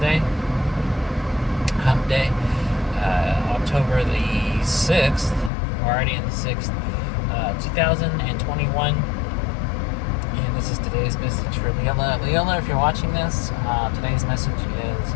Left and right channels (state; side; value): drops out; right; at 5.5 s